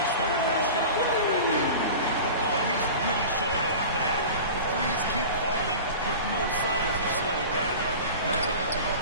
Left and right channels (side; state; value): both; inverted; correlation -0.35